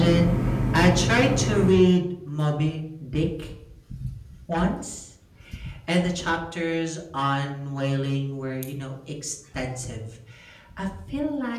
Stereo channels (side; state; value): both; identical; correlation 1.00